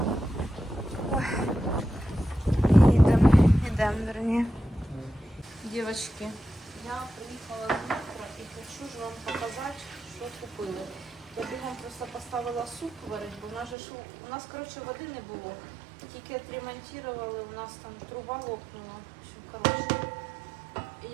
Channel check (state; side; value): drops out; left; at 13.8 s